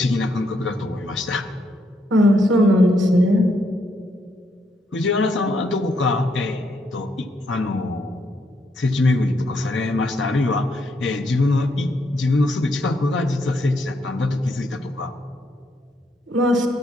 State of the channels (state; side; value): normal; both; correlation 0.76